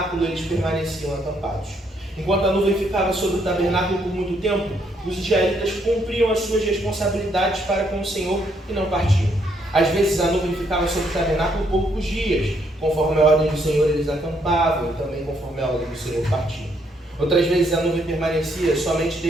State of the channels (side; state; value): both; normal; correlation 0.72